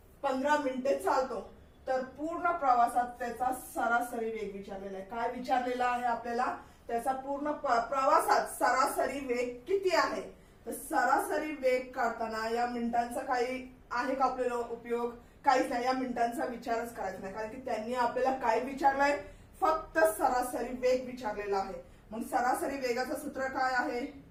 15 मिनिटे चालतो, तर पूर्ण प्रवासात त्याचा सरासरी वेग विचारलेला आहे। काय विचारलेला आहे आपल्याला? त्याचा पूर्ण प्रवासात सरासरी वेग किती आहे? तर सरासरी वेग काढताना या मिनिटांचा काही आहे का आपल्याला उपयोग? काहीच नाही, या मिनिटांचा विचारच करायचा नाही, कारण की त्यांनी आपल्याला काय विचारलंय? फक्त सरासरी वेग विचारलेला आहे। मग सरासरी वेगाचं सूत्र काय आहे?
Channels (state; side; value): identical; both; correlation 1.00